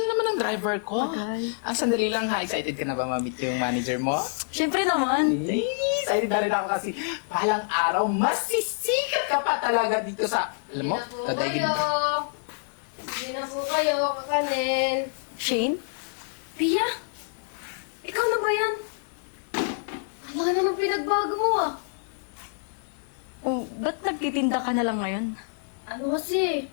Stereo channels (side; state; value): right; silent; digital silence